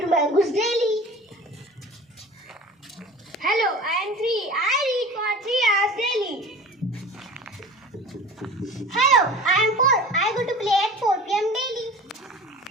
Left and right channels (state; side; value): normal; both; correlation 0.39